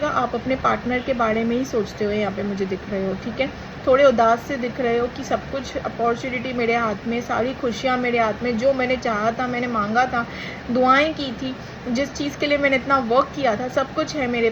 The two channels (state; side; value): identical; both; correlation 1.00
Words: आप अपने पार्टनर के बारे में ही सोचते हुए यहाँ पे मुझे दिख रहे हो, ठीक है। थोड़े उदास से दिख रहे हो कि सब कुछ अपॉर्चुनिटी मेरे हाथ में, सारी खुशियाँ मेरे हाथ में, जो मैंने चाहा था, मैंने मांगा था, दुआएं की थी, जिस चीज़ के लिए मैंने इतना वर्क किया था, सब कुछ है मेरे